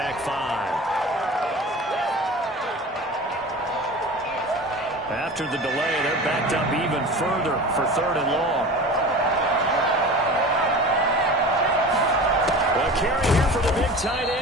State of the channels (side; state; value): both; normal; correlation 0.35